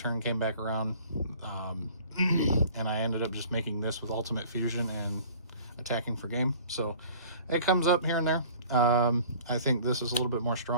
came back around, and I ended up just making this with ultimate fusion and attacking for game. So it comes up here and there. I think this is a little bit more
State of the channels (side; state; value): both; inverted; correlation -0.49